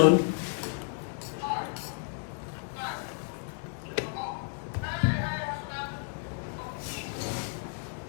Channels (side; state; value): right; silent; 56 dB below the other